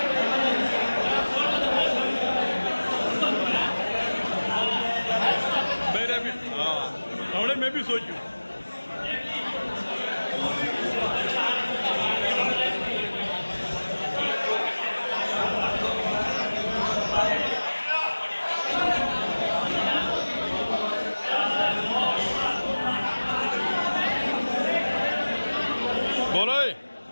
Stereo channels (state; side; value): inverted; both; correlation -1.00